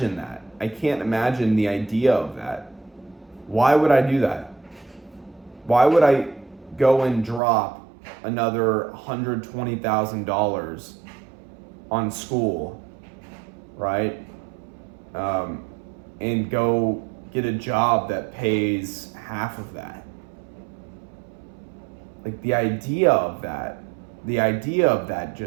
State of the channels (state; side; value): drops out; left; at 7.4 s